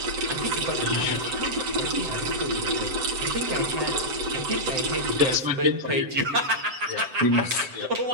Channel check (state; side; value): late; left; 7.8 ms